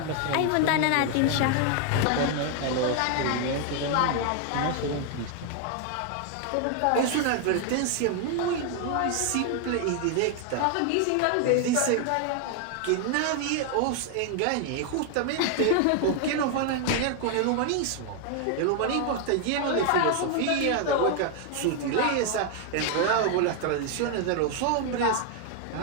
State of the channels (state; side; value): different; both; correlation 0.00